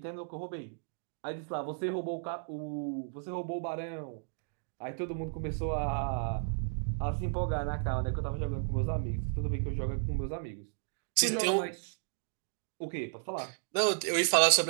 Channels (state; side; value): silent; left; digital silence